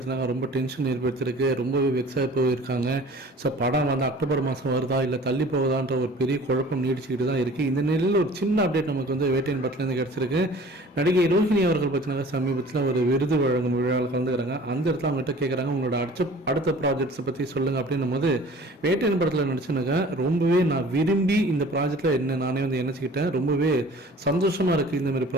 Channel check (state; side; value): normal; both; correlation 0.46